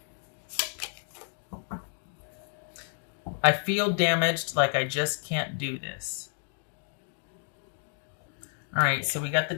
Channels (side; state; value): right; silent; 57 dB below the other